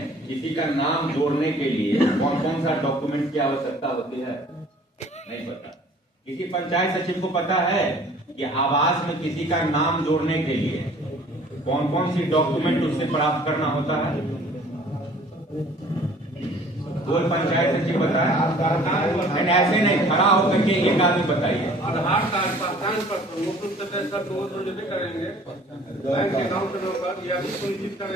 किसी का नाम जोड़ने के लिए कौन कौन सा डॉक्यूमेंट की आवश्यकता होती है? नहीं पता। किसी पंचायत सचिव को पता है कि आवास में किसी का नाम जोड़ने के लिए कौन कौन सी डॉक्यूमेंट उससे प्राप्त करना होता है? कोई पंचायत सचिव बताए? ऐसे नहीं, खड़ा होकर के एक आदमी बताइए। आधार कार्ड, पहचान पत्र, मुख्य सदस्य को जब करेंगे, बैंक अकाउंट नंबर, या भी सुनिश्चित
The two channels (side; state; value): both; normal; correlation 0.52